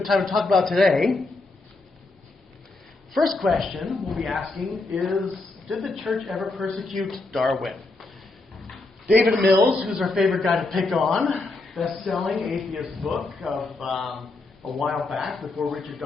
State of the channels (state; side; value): quieter; right; 3.3 dB